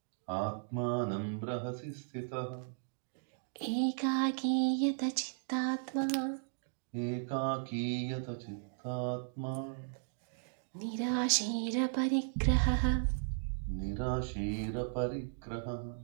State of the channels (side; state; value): left; silent; digital silence